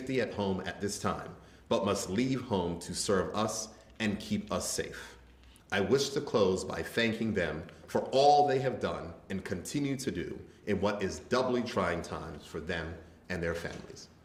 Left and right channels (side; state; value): both; identical; correlation 1.00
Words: at home at this time, but must leave home to serve us and keep us safe. I wish to close by thanking them for all they have done and continue to do in what is doubly trying times for them and their families.